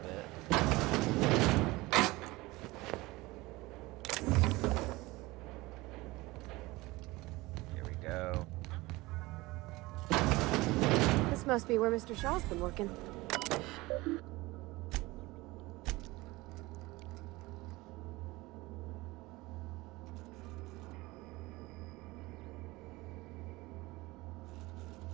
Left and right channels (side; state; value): left; quieter; 21.1 dB